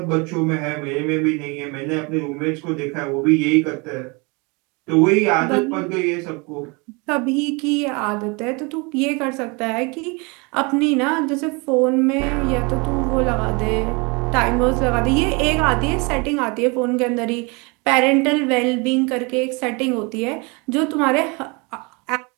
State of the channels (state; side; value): quieter; left; 29.2 dB